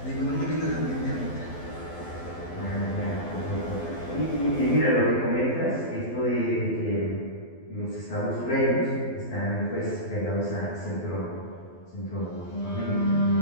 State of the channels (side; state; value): right; late; 12 ms